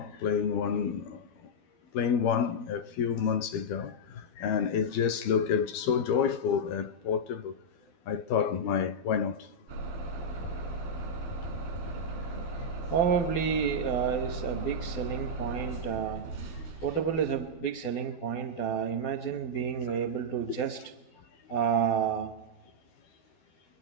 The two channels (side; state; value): right; late; 12 ms